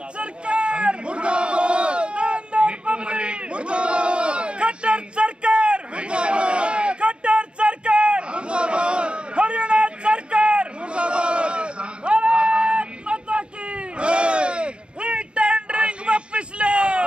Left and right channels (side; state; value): left; late; 0.056 ms